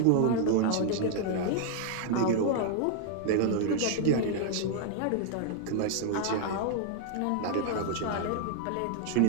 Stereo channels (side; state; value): both; different; correlation 0.00